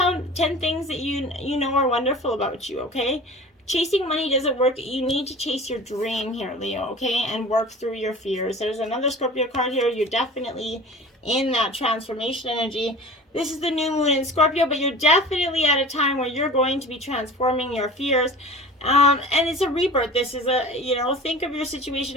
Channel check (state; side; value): normal; both; correlation 0.39